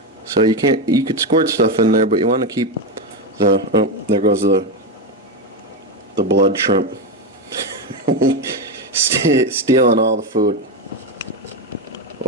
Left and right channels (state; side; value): normal; both; correlation 0.11